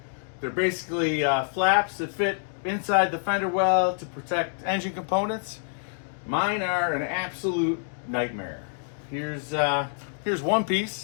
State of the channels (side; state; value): right; silent; digital silence